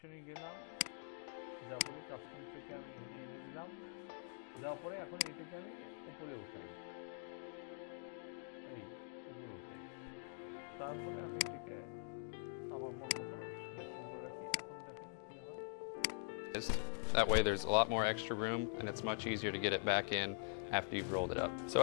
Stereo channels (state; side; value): silent; right; digital silence